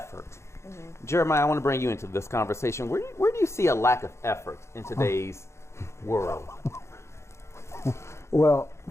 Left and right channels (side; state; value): right; late; 0.13 ms